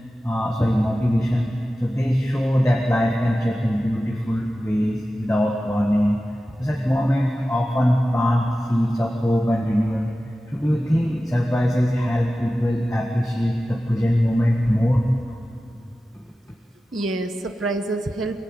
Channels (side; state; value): both; normal; correlation 0.94